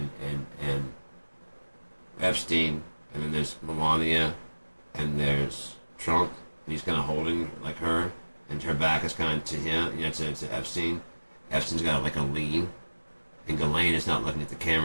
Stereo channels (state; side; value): inverted; both; correlation -1.00